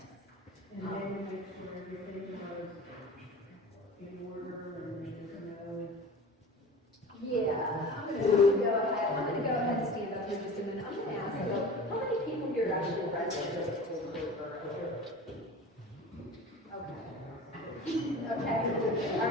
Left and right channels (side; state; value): both; normal; correlation 0.36